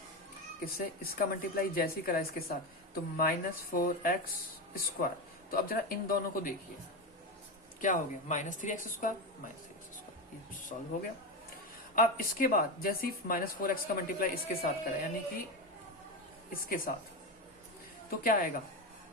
किससे, इसका मल्टीप्लाई जैसे ही करा इसके साथ, तो -4x स्क्वायर। तो अब जरा इन दोनों को देखिए क्या हो गया, -3x स्क्वायर, -3x स्क्वायर, ये सॉल्व हो गया। अब इसके बाद जैसे ही -4x का मल्टीप्लाई इसके साथ करा, यानी कि इसके साथ, तो क्या आएगा,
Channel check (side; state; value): both; normal; correlation 0.16